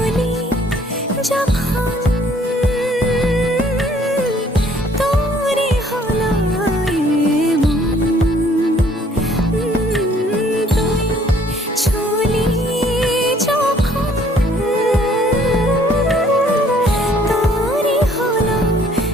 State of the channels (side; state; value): both; normal; correlation 0.60